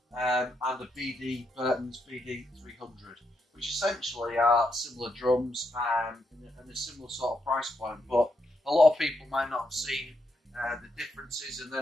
and a Burtons BD300, which essentially are similar drums and a similar sort of price point, but a lot of people might not have seen the differences, and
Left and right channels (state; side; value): normal; both; correlation 0.80